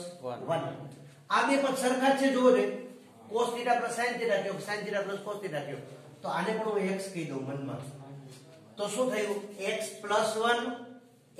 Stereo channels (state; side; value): identical; both; correlation 1.00